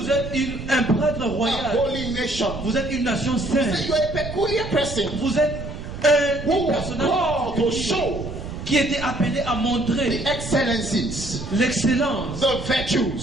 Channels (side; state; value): right; noise; rumble, 9 dB below the sound